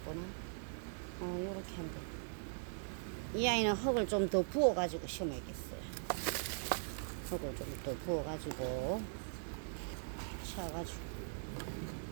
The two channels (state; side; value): silent; left; 51 dB below the other